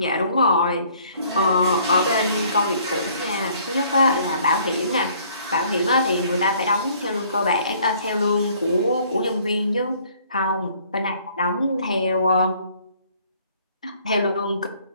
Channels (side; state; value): both; inverted; correlation -0.59